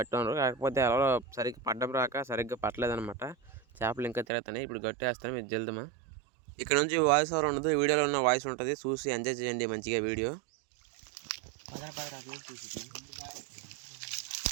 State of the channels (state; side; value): drops out; left; at 4.2 s